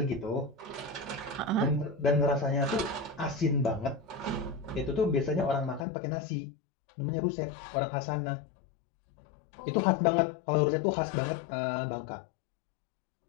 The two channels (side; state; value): right; drops out; at 5.9 s